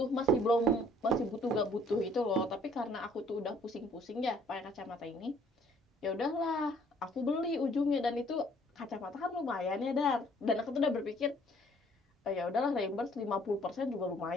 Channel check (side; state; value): both; normal; correlation 0.60